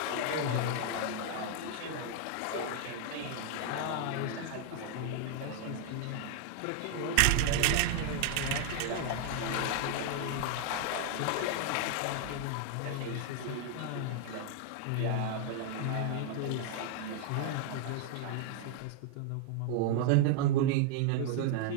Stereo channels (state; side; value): different; both; correlation 0.00